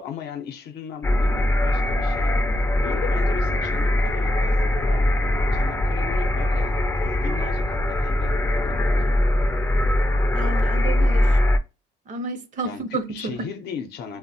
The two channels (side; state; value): both; normal; correlation 0.86